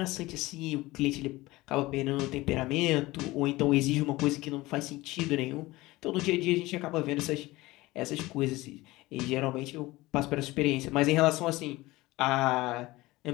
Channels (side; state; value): right; quieter; 19.6 dB